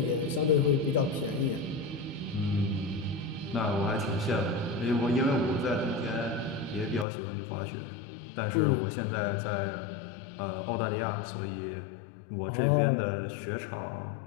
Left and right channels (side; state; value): right; drops out; at 7.1 s